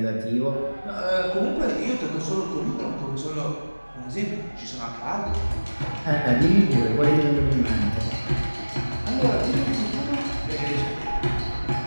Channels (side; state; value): both; inverted; correlation -1.00